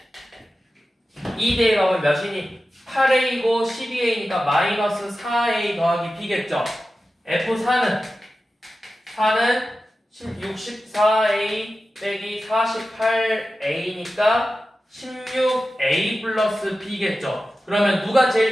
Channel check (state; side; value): normal; both; correlation 0.93